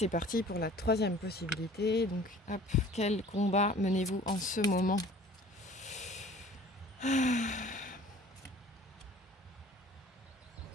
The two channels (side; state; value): both; normal; correlation 0.48